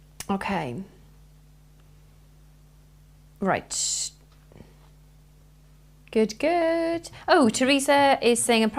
Okay. Right. Good, good. Oh, Teresa is saying, I'm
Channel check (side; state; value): both; identical; correlation 1.00